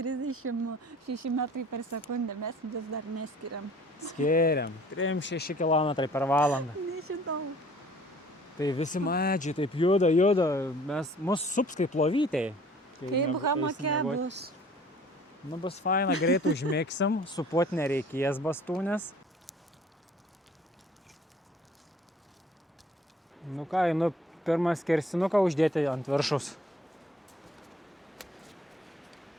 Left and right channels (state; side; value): normal; both; correlation 0.53